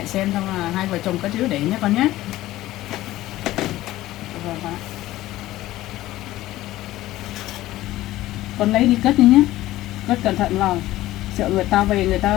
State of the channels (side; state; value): right; quieter; 15.9 dB